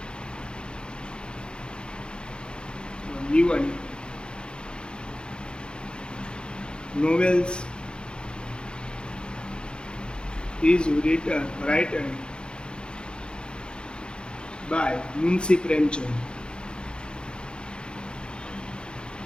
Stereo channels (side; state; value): right; late; 0.051 ms